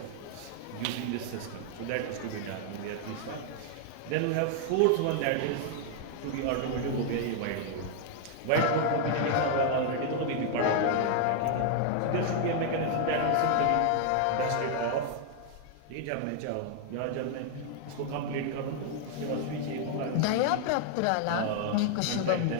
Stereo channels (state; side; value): different; both; correlation 0.00